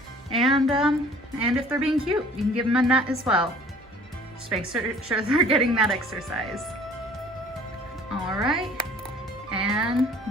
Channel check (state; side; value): normal; both; correlation 0.51